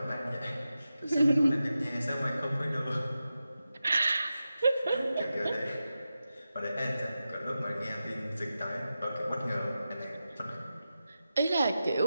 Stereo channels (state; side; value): inverted; both; correlation -0.91